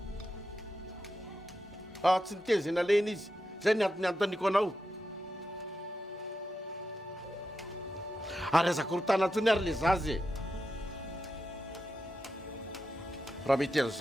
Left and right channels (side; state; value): both; normal; correlation 0.88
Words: Tsy niteny izay nalena izy. Zay ny antony antoniko anao. Ary azako rotana antsony ary le zazy e. Raha mety